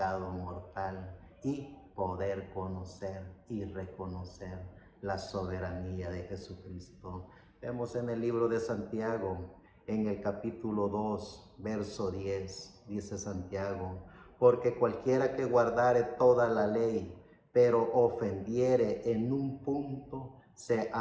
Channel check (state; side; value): identical; both; correlation 1.00